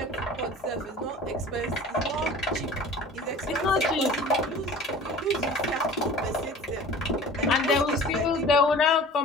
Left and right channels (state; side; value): normal; both; correlation 0.42